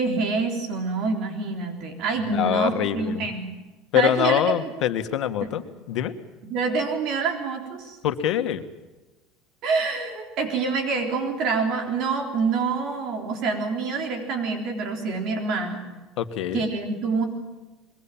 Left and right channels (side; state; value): both; normal; correlation 0.36